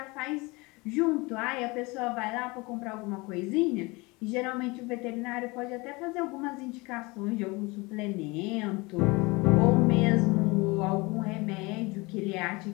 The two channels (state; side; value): quieter; right; 24.8 dB